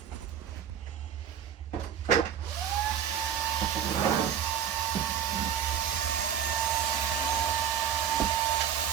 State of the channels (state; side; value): quieter; left; 8.9 dB